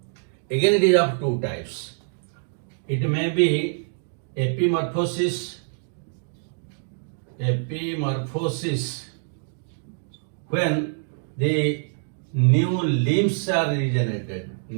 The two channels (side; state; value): left; silent; digital silence